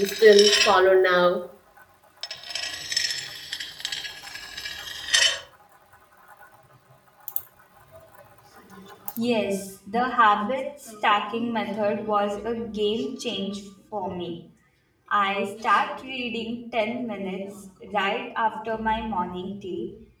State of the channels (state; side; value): identical; both; correlation 1.00